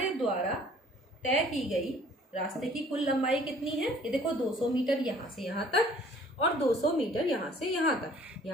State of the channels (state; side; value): normal; both; correlation 0.55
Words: द्वारा तय की गई रास्ते की कुल लंबाई कितनी है? ये देखो, 200 मीटर यहाँ से यहाँ तक और 200 मीटर यहाँ से यहाँ तक,